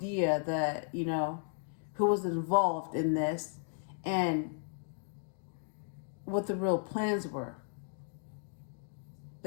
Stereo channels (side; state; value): right; silent; 54 dB below the other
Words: that, who was involved in this and what the real plans were.